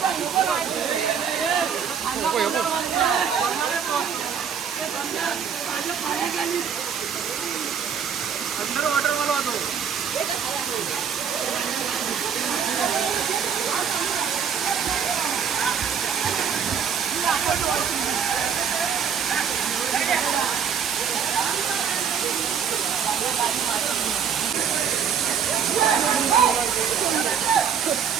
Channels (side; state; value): left; quieter; 7.4 dB